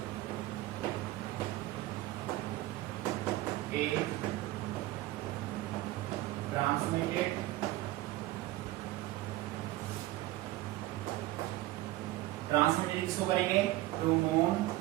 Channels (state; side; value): quieter; left; 17.1 dB